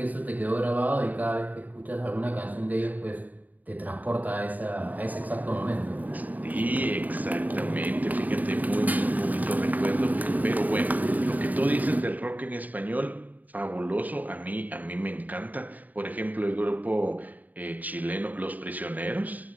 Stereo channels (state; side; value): late; left; 0.080 ms